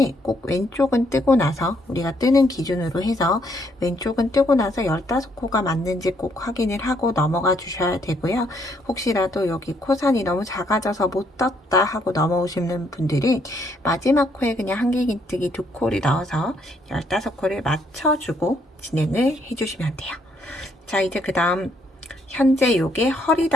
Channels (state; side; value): normal; both; correlation 0.71